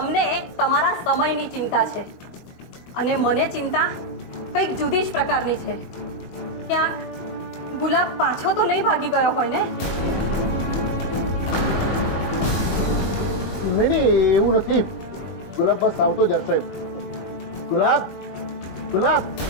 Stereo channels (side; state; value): right; late; 21 ms